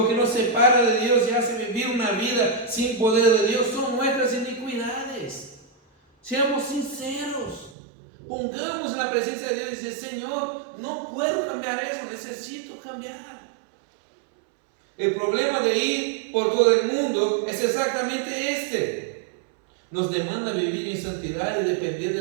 que nos separa de Dios y hace vivir una vida sin poder de Dios son nuestras iniquidades. Seamos sinceros, pongamos en la presencia de Dios y decir, Señor, no puedo cambiar eso, necesito cambiar. El problema de ir por todo el mundo es exactamente este. Nos demanda vivir en santidad y depender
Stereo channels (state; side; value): drops out; left; at 7.8 s